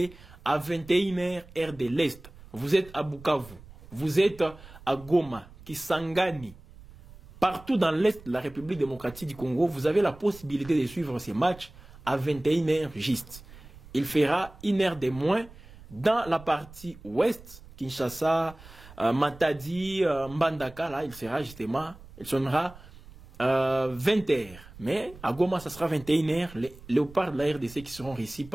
à 21h heure de l'Est. Vous êtes à Bukavu, vous êtes à Goma, Kisangani, partout dans l'Est de la République démocratique du Congo, vous avez la possibilité de suivre ces matchs à 21h juste. Il fera une heure de moins dans la partie ouest, Kinshasa, Matadi, Mbandaka, là, il sonnera 20h. Mais à Goma, ça sera 21h. Les léopards de la RDC qui seront réussis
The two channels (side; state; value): right; noise; rumble, 20 dB below the sound